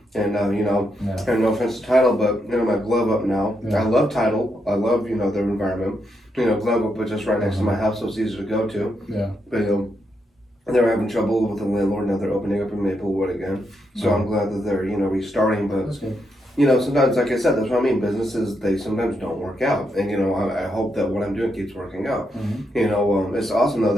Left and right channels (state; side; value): normal; both; correlation 0.81